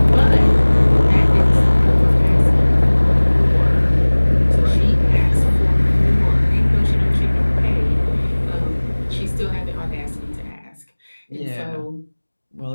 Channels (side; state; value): both; inverted; correlation -1.00